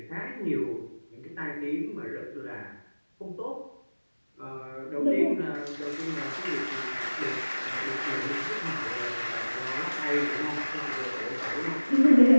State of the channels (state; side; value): inverted; both; correlation -1.00